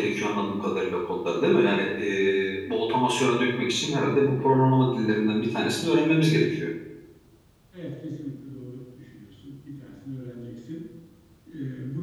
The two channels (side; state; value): both; identical; correlation 1.00